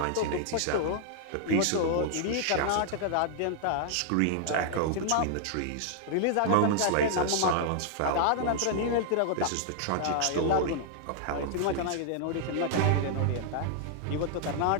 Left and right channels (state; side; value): different; both; correlation -0.01